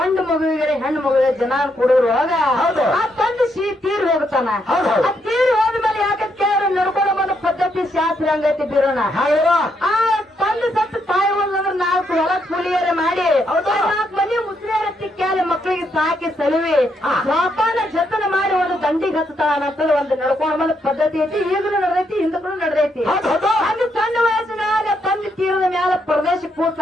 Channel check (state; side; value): normal; both; correlation 0.77